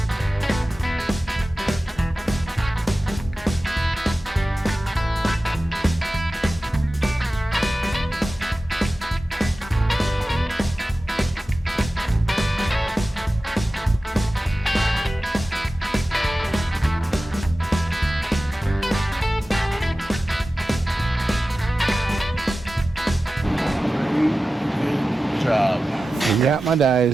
Job. I got my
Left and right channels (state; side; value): normal; both; correlation 0.95